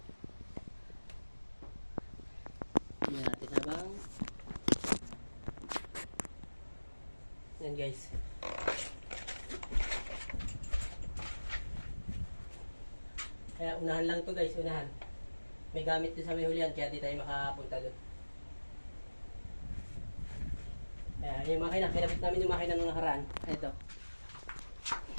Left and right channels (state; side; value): inverted; both; correlation -1.00